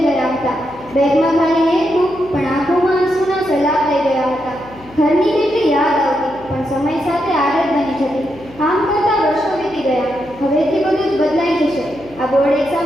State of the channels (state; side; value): noise; left; hum, 22 dB below the sound